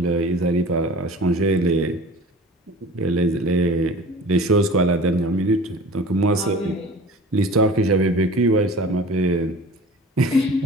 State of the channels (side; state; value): both; normal; correlation 0.41